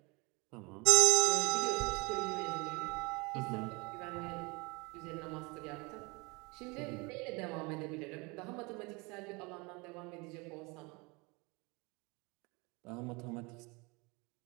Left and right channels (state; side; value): quieter; left; 27.3 dB